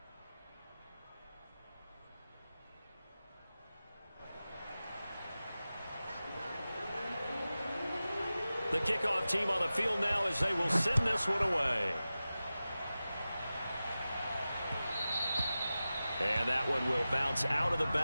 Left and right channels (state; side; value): inverted; both; correlation -0.95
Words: The kickoff team on the field now as they will send this one away. And that one will bounce out of the